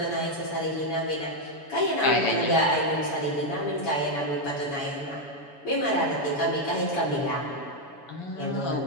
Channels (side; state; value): right; late; 7.0 ms